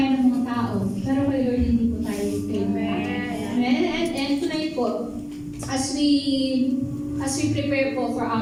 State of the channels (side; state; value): both; identical; correlation 1.00